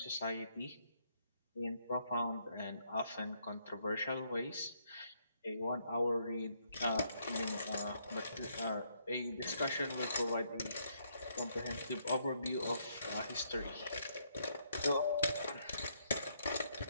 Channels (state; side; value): inverted; both; correlation -0.73